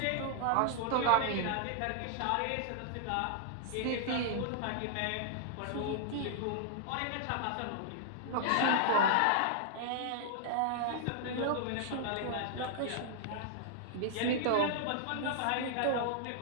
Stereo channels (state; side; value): different; both; correlation -0.01